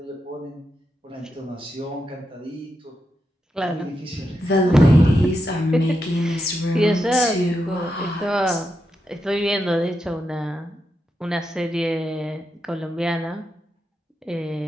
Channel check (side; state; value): both; normal; correlation 0.85